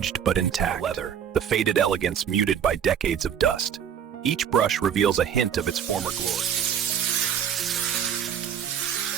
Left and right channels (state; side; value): quieter; left; 8.5 dB